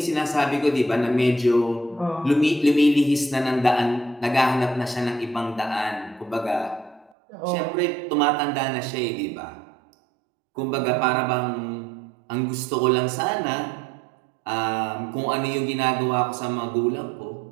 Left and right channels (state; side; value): drops out; left; at 7.1 s